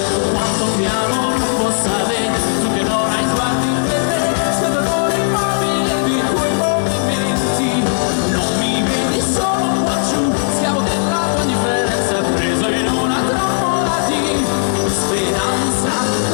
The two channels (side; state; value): right; silent; digital silence